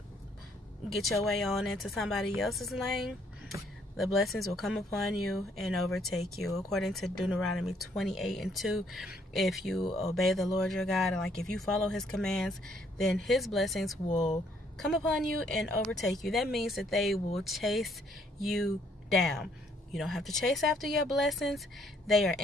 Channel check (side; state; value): both; normal; correlation 0.67